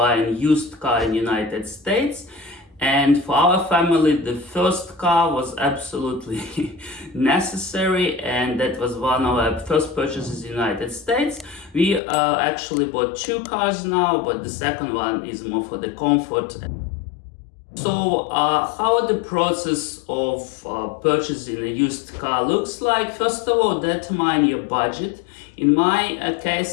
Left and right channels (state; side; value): drops out; right; at 12.0 s